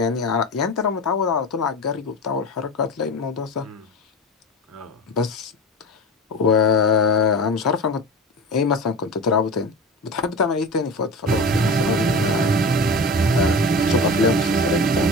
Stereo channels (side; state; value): both; normal; correlation 0.30